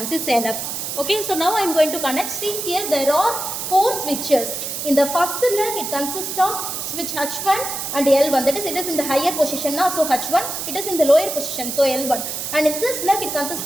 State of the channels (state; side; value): noise; right; hiss, 5 dB below the sound